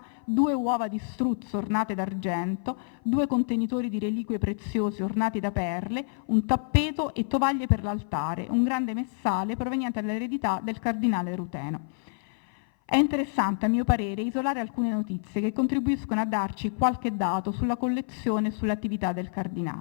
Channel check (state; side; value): silent; right; 56 dB below the other